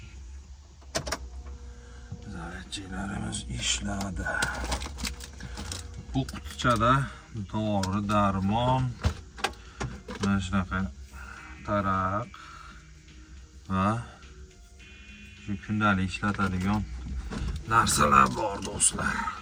Zaryadchiklarimiz ishladi. Bu qutichada dori, darmon, mana shunaqa taraq va shu kundalik ishlatadigan narsalar bor do'stlar.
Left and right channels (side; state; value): both; identical; correlation 1.00